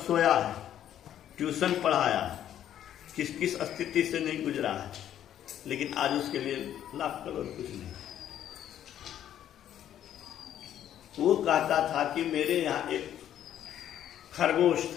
सोया है, ट्यूशन पढ़ाया है, किस किस स्थिति से नहीं गुजरा है, लेकिन आज उसके लिए लाख करोड़ कुछ नहीं। वो कहता था कि मेरे यहाँ एक खरगोश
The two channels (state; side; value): quieter; right; 10.9 dB